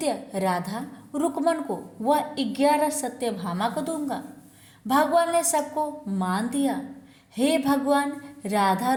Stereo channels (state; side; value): identical; both; correlation 1.00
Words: राधा रुक्मण को व 11 सत्यभामा को दूंगा। भगवान ने सबको मान दिया। हे भगवान, राधा